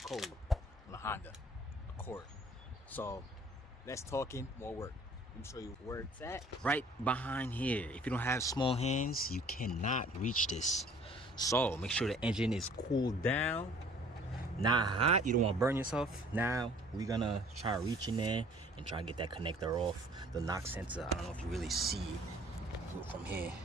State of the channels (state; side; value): normal; both; correlation 0.54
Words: code on a Honda Accord. So less talking, more work. Let me show you where it's at. Right behind here. If you don't have small hands, you cannot reach this. So make sure the engine is cooled down, not hot. You don't want to burn yourself. Now we're gonna try to reach in there and try to get that connector off the knock sensor. I don't know if you really see it from here.